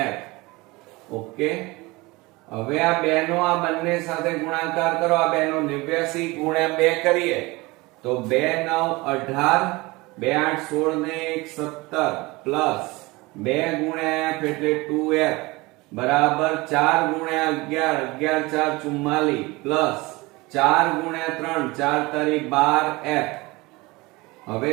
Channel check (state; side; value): quieter; left; 22.9 dB